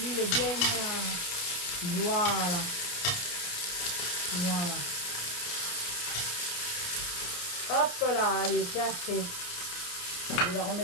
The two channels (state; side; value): late; right; 28 ms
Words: est bien. Voilà. Voilà. Hop là, allez, c'est assez. Je vais la